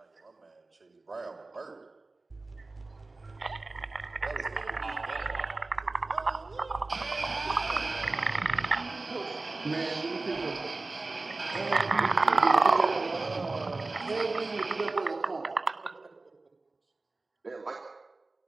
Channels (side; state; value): left; quieter; 3.3 dB